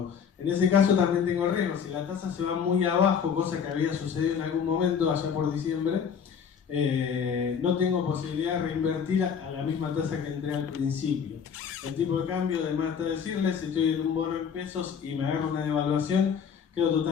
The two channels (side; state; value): right; quieter; 7.1 dB